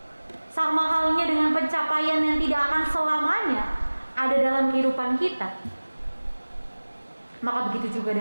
Sama halnya dengan pencapaian yang tidak akan selamanya ada dalam kehidupan kita, maka begitu juga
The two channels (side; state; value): both; inverted; correlation -1.00